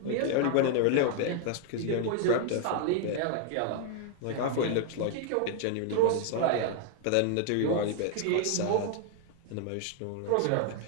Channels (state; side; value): different; both; correlation 0.00